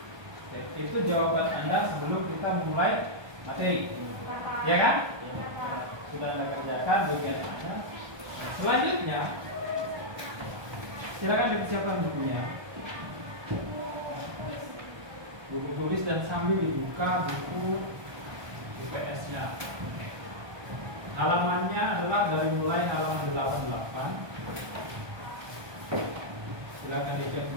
Itu jawaban Anda sebelum kita memulai materi, ya kan? Sudah Anda kerjakan bagian Anda. Selanjutnya, silakan dipersiapkan bukunya. Buku tulis dan sambil dibuka buku IPS-nya. Halamannya adalah dari mulai halaman 88. Silakan dicek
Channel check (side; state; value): left; late; 1.2 ms